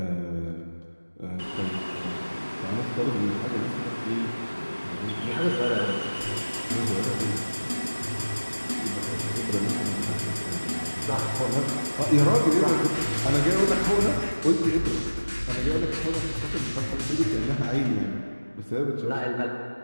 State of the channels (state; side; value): inverted; both; correlation -1.00